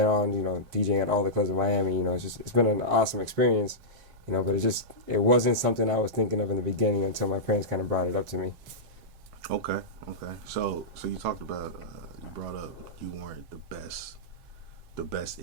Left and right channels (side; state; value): left; late; 7.6 ms